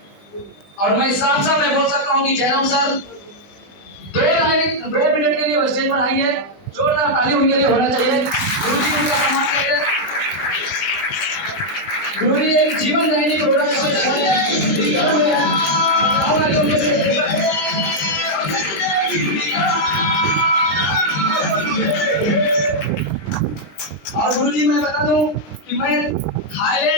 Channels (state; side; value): late; right; 20 ms